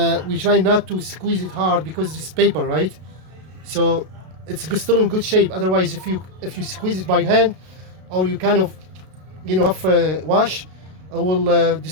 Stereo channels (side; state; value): left; late; 32 ms